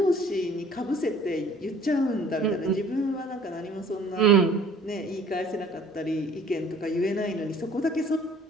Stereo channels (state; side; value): normal; both; correlation 0.53